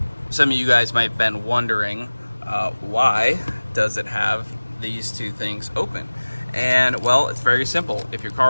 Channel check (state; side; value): inverted; both; correlation -1.00